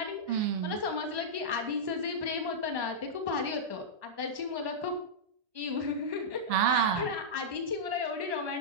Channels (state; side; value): late; left; 1.1 ms